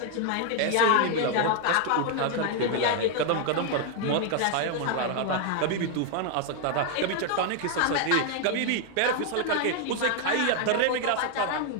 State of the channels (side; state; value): both; different; correlation 0.00